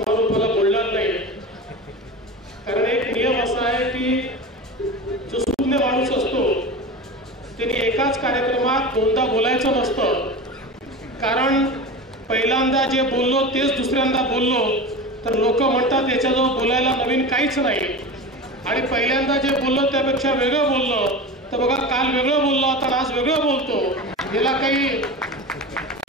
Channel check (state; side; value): normal; both; correlation 0.29